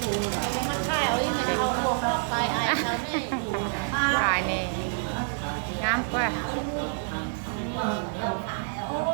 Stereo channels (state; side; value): silent; left; digital silence